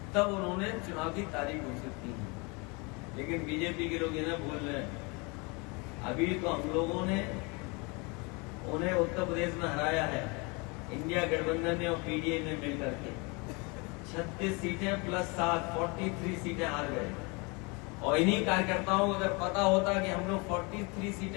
तब उन्होंने चुनाव की तारीख घोषित की। लेकिन बीजेपी के लोग इन्हें भूल रहे हैं। अभी तो हम लोगों ने उन्हें उत्तर प्रदेश में हराया है, इंडिया गठबंधन ने और पीडीए ने मिलकर के 36 सीटें प्लस 7 43 सीटें हार गए। और इन्हीं कार्यकर्ताओं को अगर पता होता कि हम लोग 43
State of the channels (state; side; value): quieter; right; 29.3 dB